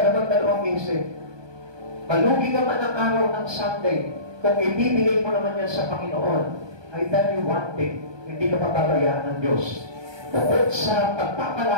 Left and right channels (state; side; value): late; left; 1.2 ms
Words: naman dalawang isip. Malugi ka man ang araw ng Sunday, kung ibibigay mo naman yan sa Panginoon, I tell you one thing, hindi ka papabayaan ng Diyos. Bukod sa